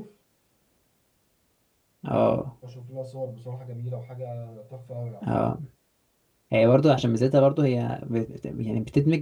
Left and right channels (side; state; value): both; identical; correlation 1.00